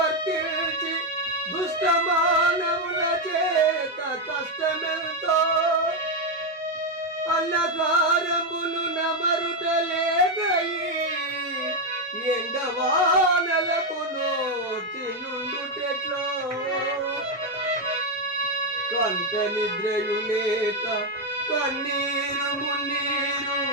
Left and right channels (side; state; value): both; normal; correlation 0.05